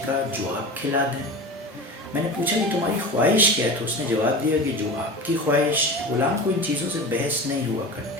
کہا جو آپ کھلا دیں۔ میں نے پوچھا کہ تمہاری خواہش کیا ہے، تو اس نے جواب دیا کہ جو آپ کی خواہش۔ غلام کو ان چیزوں سے بحث نہیں ہوا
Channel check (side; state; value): both; normal; correlation 0.31